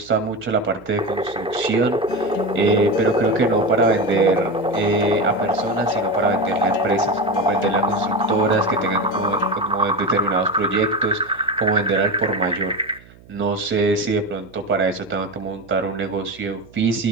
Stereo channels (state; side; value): noise; right; hum, 24 dB below the sound